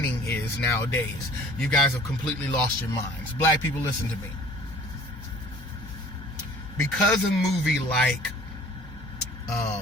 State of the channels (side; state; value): both; normal; correlation 0.49